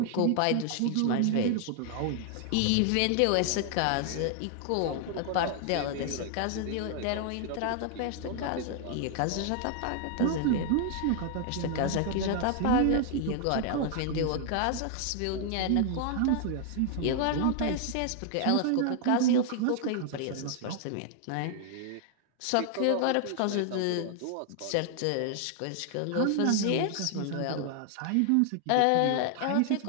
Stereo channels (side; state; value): both; different; correlation 0.00